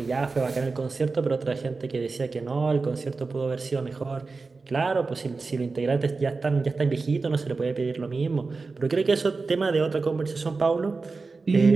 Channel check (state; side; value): quieter; left; 4.1 dB